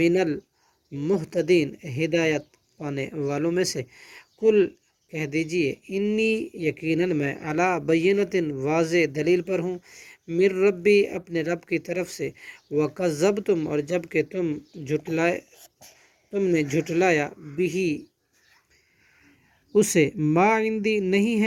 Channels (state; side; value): identical; both; correlation 1.00